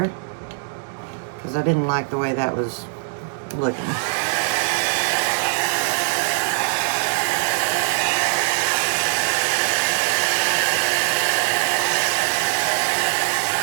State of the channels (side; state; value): left; silent; 65 dB below the other